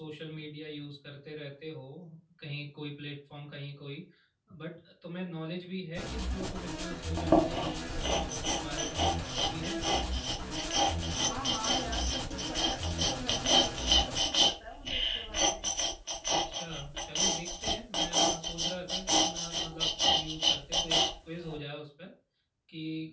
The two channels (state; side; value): identical; both; correlation 1.00